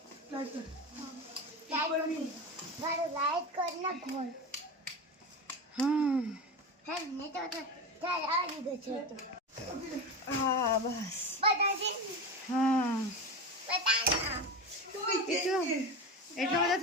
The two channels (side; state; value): both; normal; correlation 0.23